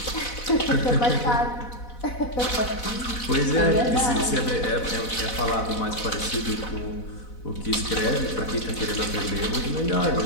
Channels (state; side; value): late; right; 4.0 ms